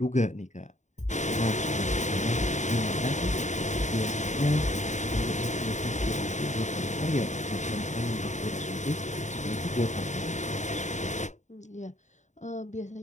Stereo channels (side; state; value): right; late; 0.34 ms